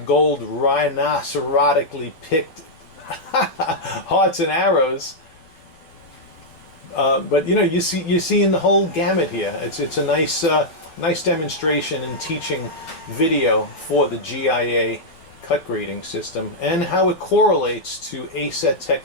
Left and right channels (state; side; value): late; right; 12 ms